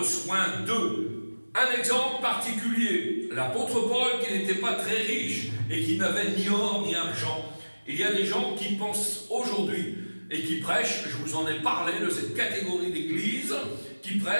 soin d'eux. Un exemple particulier, l'apôtre Paul qui n'était pas très riche et qui n'avait ni or ni argent. Il y a des gens qui pensent aujourd'hui et qui prêchent, je vous en ai parlé de cette catégorie d'église, qui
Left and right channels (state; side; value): inverted; both; correlation -1.00